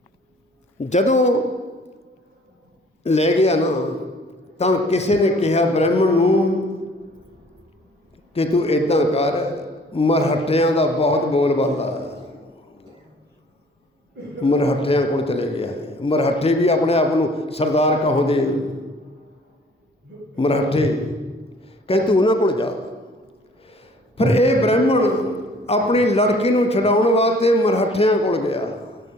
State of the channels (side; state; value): both; normal; correlation 0.54